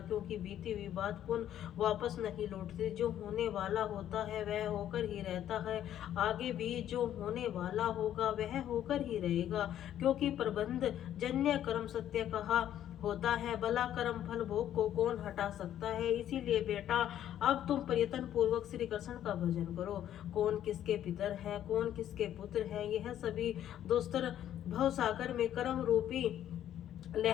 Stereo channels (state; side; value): quieter; right; 11.2 dB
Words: क्योंकि बीती हुई बात पुनः वापस नहीं लौटती। जो होने वाला होता है वह होकर ही रहता है। आगे भी जो होने वाला होगा वह होकर ही रहेगा, क्योंकि प्रबंध जन्य कर्म सत्य कहा होता है। भला कर्म फल भोग को कौन हटा सकता है? इसीलिए बेटा, अब तुम प्रयत्न पूर्वक श्री कृष्ण का भजन करो। कौन किसके पितर है, कौन किसके पुत्र है, यह सभी दोस्तर भवसागर में कर्म रूपी